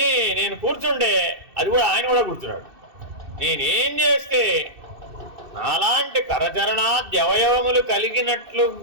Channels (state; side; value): late; left; 2.6 ms